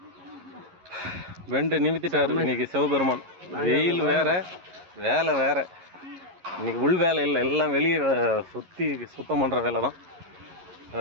வெண்டு நிமித்திட்டாரு இன்னைக்கு சிவபெருமான். வெயில் வேற, வேலை வேற. இன்னைக்கு உள் வேலை இல்லை, எல்லாம் வெளியே சுற்றி சுத்தம் பண்ணுற வேலை தான்.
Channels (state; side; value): late; left; 11 ms